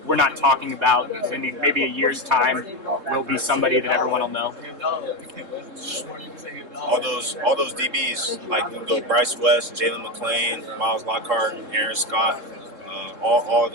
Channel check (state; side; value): late; left; 3.7 ms